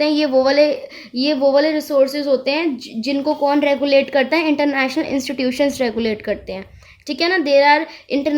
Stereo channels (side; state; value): both; identical; correlation 1.00